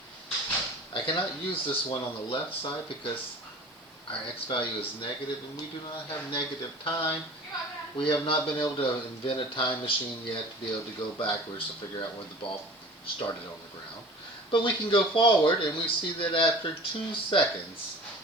I cannot use this one on the left side because our x value is negative, and we do not have negative time. We have not been able to invent a time machine yet to be able to go backwards to figure out when the ball started on the ground. But we can go forward, and we see that after 2 seconds,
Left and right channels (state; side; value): normal; both; correlation 0.42